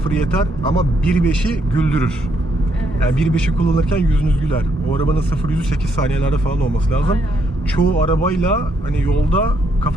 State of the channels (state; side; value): normal; both; correlation 0.74